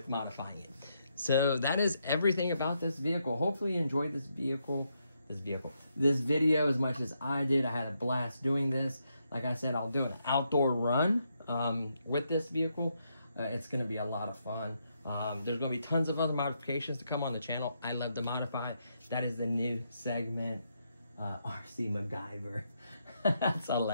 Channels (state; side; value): inverted; both; correlation -0.79